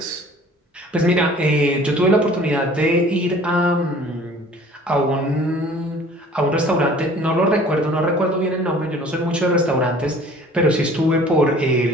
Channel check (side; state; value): both; normal; correlation 0.50